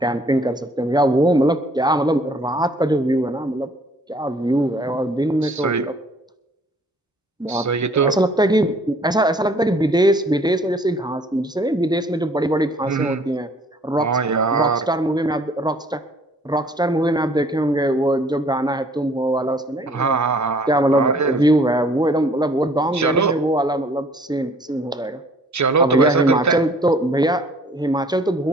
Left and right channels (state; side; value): normal; both; correlation 0.57